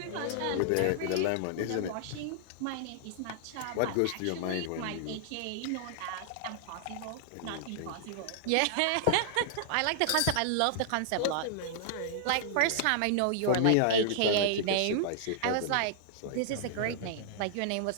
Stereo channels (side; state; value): both; different; correlation -0.01